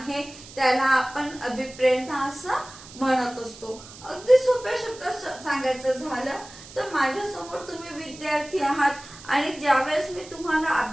त्याला आपण अभिप्रेरणा असं म्हणत असतो। अगदी सोप्या शब्दात सांगायचं झालं तर माझ्या समोर तुम्ही विद्यार्थी आहात आणि ज्यावेळेस मी तुम्हाला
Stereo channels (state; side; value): noise; right; hiss, 18 dB below the sound